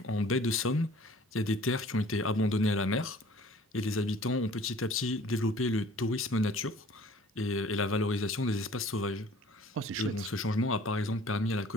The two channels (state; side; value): normal; both; correlation 0.50